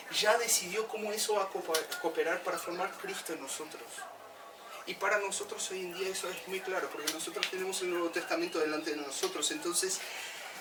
ya decidió cómo eso va a cooperar para formar Cristo en nosotros. Y para nosotros hoy en día eso es muy claro, porque nosotros tenemos el Nuevo Testamento delante de nosotros. Entonces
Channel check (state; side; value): identical; both; correlation 1.00